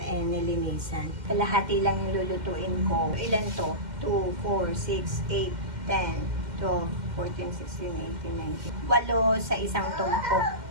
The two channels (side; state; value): left; late; 2.1 ms